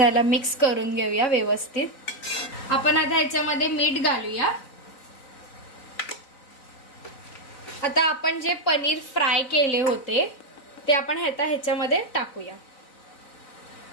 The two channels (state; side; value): late; right; 4.0 ms